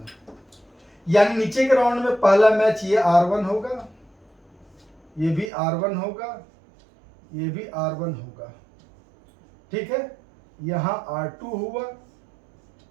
यानी नीचे के राउंड में पहला मैच ये R1 होगा, ये भी R1 होगा, ये भी R1 होगा, ठीक है। यहां R2 हुआ,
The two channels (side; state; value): left; drops out; at 5.5 s